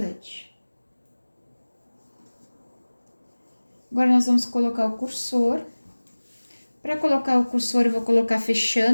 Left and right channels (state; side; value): inverted; both; correlation -1.00